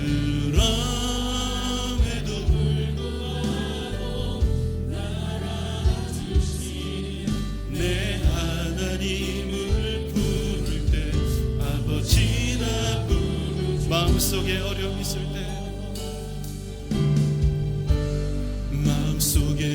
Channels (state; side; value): identical; both; correlation 1.00